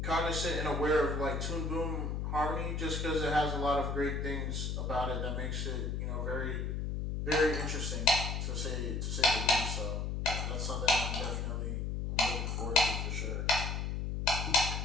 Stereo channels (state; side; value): noise; left; hum, 2 dB below the sound